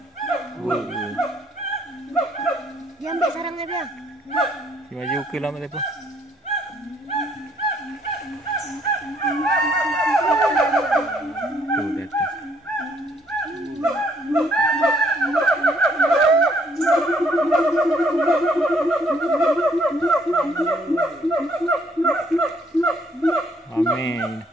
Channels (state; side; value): normal; both; correlation 0.66